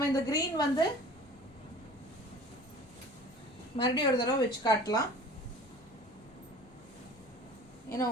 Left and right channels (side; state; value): both; normal; correlation 0.44